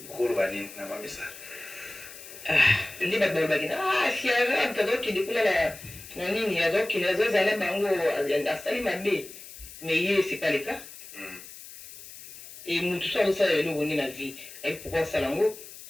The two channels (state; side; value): noise; left; hiss, 16 dB below the sound